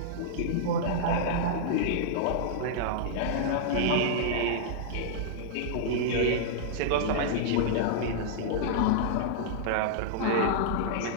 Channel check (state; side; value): different; both; correlation -0.02